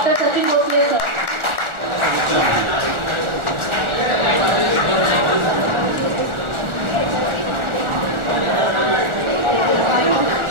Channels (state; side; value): late; left; 1.4 ms